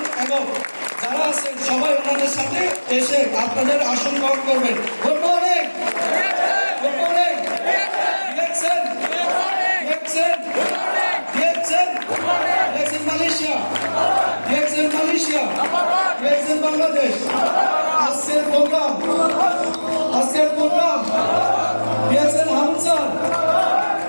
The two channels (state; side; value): inverted; both; correlation -1.00